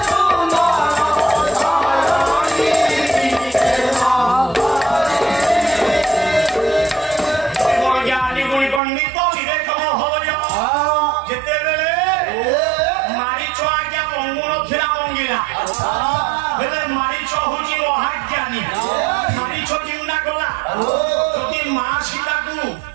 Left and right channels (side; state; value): left; drops out; at 8.8 s